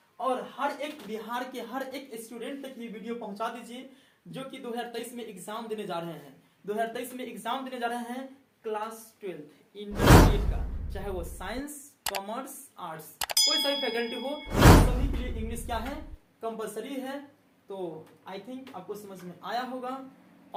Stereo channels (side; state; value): both; identical; correlation 1.00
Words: और हर एक बिहार के हर एक स्टूडेंट तक ये वीडियो पहुंचा दीजिए जो कि 2023 में एग्जाम देने जा रहे हैं। 2023 में एग्जाम देने जा रहे हैं क्लास 12 इंटरमीडिएट का, चाहे वो साइंस, कॉमर्स, आर्ट्स, कोई सा भी फैकल्टी हो, सभी के लिए इंग्लिश क्या है? कंपलसरी है। तो आई थिंक आपको समझ में आया होगा।